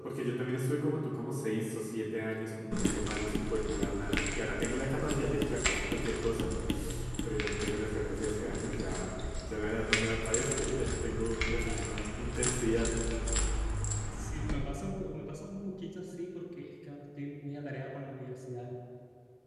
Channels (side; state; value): both; identical; correlation 1.00